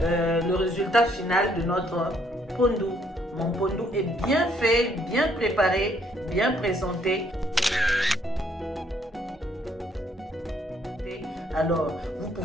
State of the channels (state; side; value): normal; both; correlation 0.68